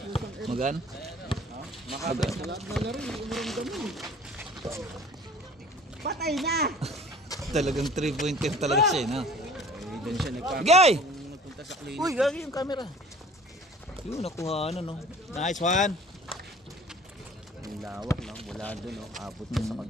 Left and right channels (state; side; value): normal; both; correlation 0.48